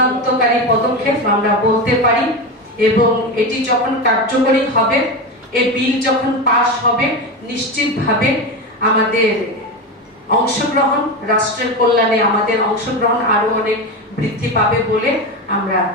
পদক্ষেপ আমরা বলতে পারি, এবং এটি যখন কার্যকরী হবে, এই বিল যখন পাস হবে, নিশ্চিতভাবে আমাদের অংশগ্রহণ, রাষ্ট্রের কল্যাণে আমাদের অংশগ্রহণ আরো অনেক বৃদ্ধি পাবে বলে আমরা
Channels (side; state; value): both; normal; correlation 0.19